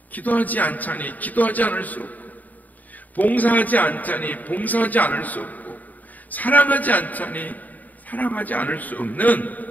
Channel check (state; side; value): late; right; 0.079 ms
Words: 기도하지 않자니 기도하지 않을 수 없고, 봉사하지 않자니 봉사하지 않을 수 없고, 사랑하지 않자니 사랑하지 않을 수 없는